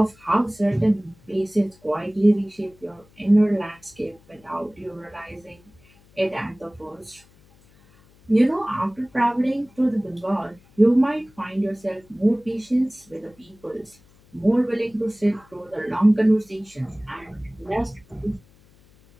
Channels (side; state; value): left; noise; hum, 29 dB below the sound